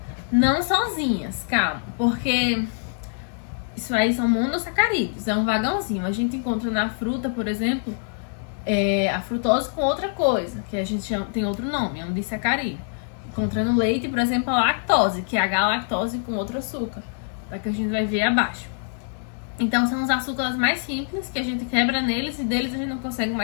Não sozinhas, calma, porque isso aí são monossacarídeos, é um vagãozinho. A gente encontra na fruta, por exemplo, a frutose com outra coisa, que a gente chama, tem outro nome, é um disacarídeo. Encontra no leite, por exemplo, a lactose, que é a galactose com outro açúcar, tá? Que a gente vai ver abaixo. Então, são os açúcares mais simples que a gente quebra neles e deles a gente não consegue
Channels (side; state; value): right; silent; 62 dB below the other